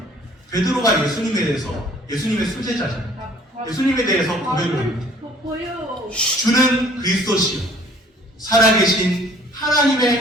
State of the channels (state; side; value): normal; both; correlation 0.55